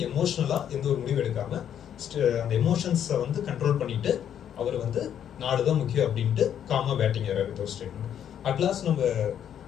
எமோஷனலாக எந்த ஒரு முடிவு எடுக்காமல் அந்த எமோஷன்ஸை வந்து கண்ட்ரோல் பண்ணிட்டு அவர் வந்து நாடு தான் முக்கியம் அப்படின்ட்டு காமாக பேட்டிங் ஆடுறாரு. ஒரு ஸ்டேட்மெண்ட். அட்லாஸ்ட் நம்ம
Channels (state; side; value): quieter; right; 9.5 dB